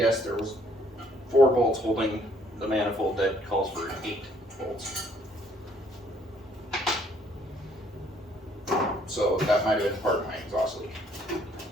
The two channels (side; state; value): both; normal; correlation 0.64